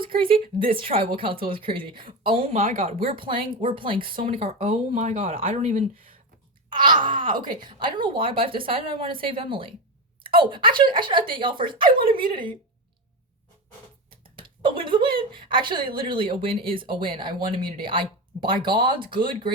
crazy, this tribal council is crazy. Oh my god, we're playing so many cards. Oh my god, I don't even. Okay. I don't know why, but I've decided I want to save Emily. Oh, actually, I should update y'all first. I want immunity. A win is a win. Actually, literally, a win is a win. I won immunity. By God's good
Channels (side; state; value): both; normal; correlation 0.17